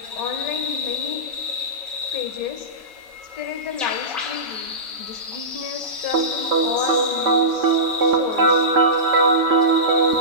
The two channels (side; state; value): both; normal; correlation -0.19